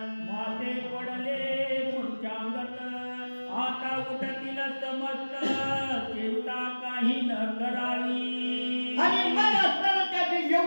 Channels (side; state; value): both; inverted; correlation -1.00